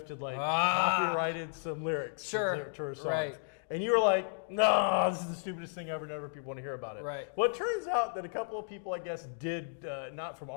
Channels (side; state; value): right; silent; digital silence